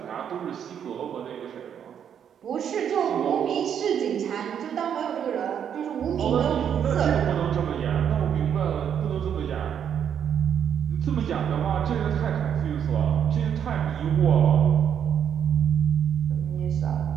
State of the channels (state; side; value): quieter; left; 8.6 dB